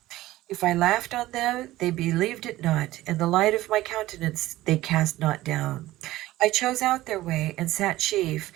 If I laughed on them, they believed it not, and the light of my countenance they cast not down. I chose out their way, and sat chief,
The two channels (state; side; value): quieter; left; 16.4 dB